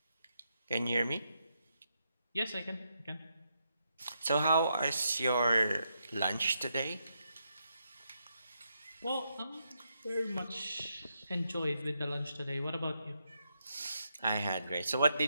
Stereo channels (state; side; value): inverted; both; correlation -0.81